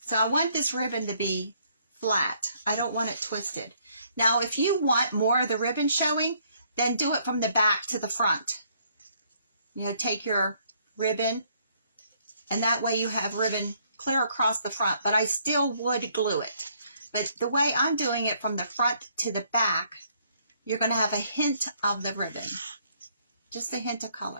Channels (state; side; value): inverted; both; correlation -0.67